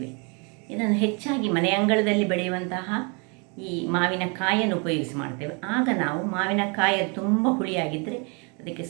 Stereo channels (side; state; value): left; quieter; 33.5 dB